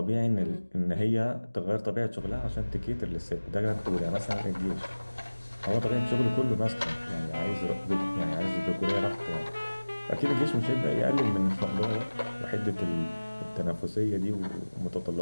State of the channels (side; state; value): both; inverted; correlation -1.00